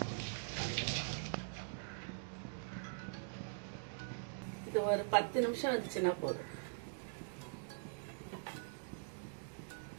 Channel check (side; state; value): left; silent; digital silence